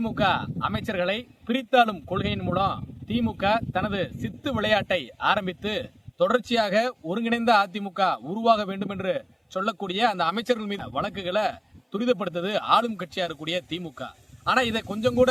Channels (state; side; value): identical; both; correlation 1.00